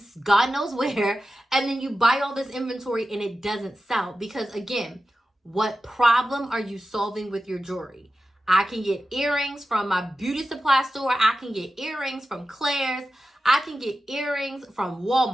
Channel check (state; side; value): normal; both; correlation 0.93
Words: God knows where, and then you buy all this inventory and it doesn't sell. Because again, what problem are you solving with your jewelry? I can get earrings from my beauty supply store. I can get earrings from Claire's. I can get earrings from